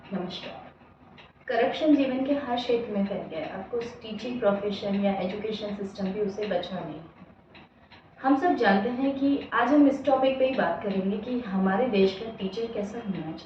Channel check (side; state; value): both; identical; correlation 1.00